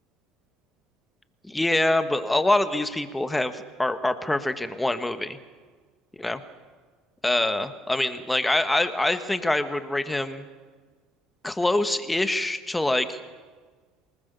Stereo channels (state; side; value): normal; both; correlation 0.96